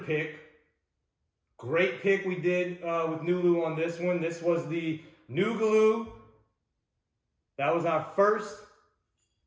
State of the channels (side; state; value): both; identical; correlation 1.00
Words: Great pick we did with NULU on this one. This was the NULU. That was our first